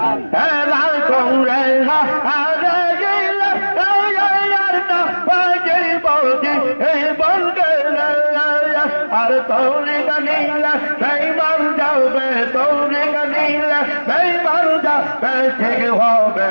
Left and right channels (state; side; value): inverted; both; correlation -1.00